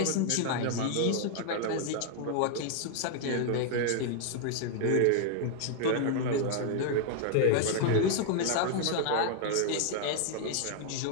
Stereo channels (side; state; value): both; different; correlation 0.00